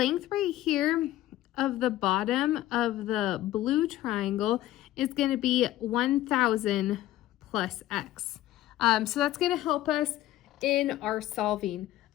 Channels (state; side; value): quieter; right; 14.7 dB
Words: right here of the bottom of the blue triangle is going to be 1,000 plus X. So that's going to help us in our solving.